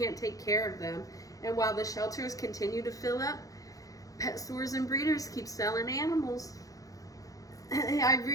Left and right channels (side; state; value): right; late; 0.17 ms